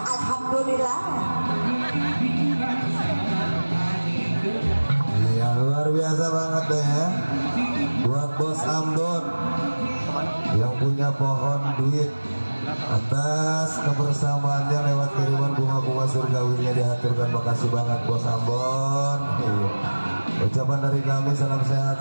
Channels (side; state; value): both; inverted; correlation -1.00